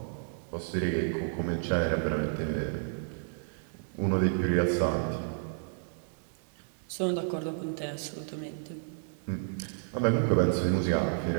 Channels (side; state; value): left; silent; digital silence